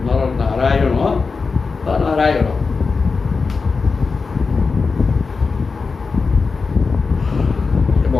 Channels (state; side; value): quieter; right; 4.6 dB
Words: ନର ନାରାୟଣ ବା ନାରାୟଣ।